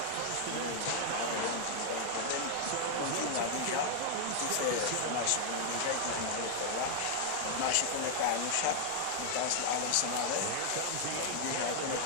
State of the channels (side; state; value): both; different; correlation 0.00